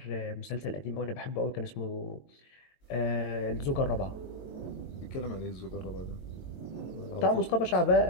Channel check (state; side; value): late; right; 22 ms